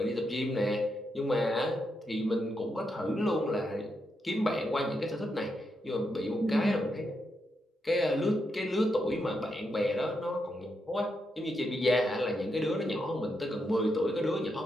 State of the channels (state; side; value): normal; both; correlation 0.83